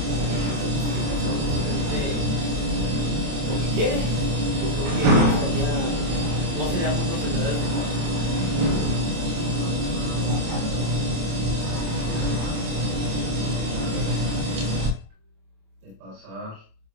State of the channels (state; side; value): late; left; 27 ms